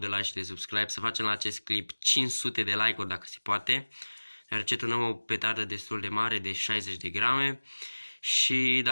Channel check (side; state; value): both; inverted; correlation -1.00